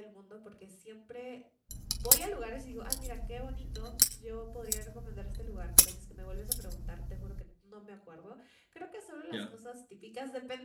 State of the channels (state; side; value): identical; both; correlation 1.00